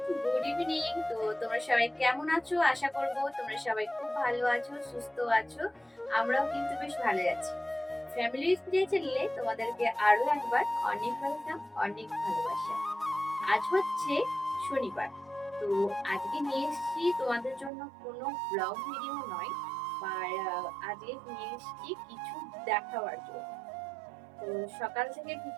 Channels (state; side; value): drops out; left; at 17.7 s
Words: good evening. তো তোমরা সবাই কেমন আছো? আশা করবো তোমরা সবাই খুব ভালো আছো, সুস্থ আছো। আমরাও কিন্তু বেশ ভালো আছি। ফ্যামিলি স্পিরিট চ্যানেলে তোমাদেরকে আরো একবার অনেক ওয়েলকাম, অনেক ভালোবাসা। আজ হচ্ছে শনিবার। তো আজকে নিয়ে এসেছি তোমাদের জন্য কোনো ব্লগ ভিডিও নয়, আর আজকে নিয়ে এসেছি কিছু দেখাবার জন্য। তো সকাল থেকে